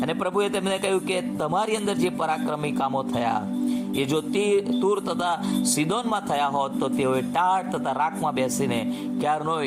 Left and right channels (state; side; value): identical; both; correlation 1.00